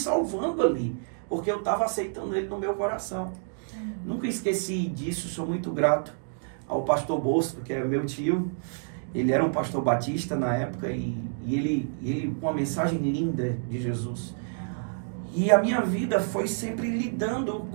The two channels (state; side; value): silent; left; digital silence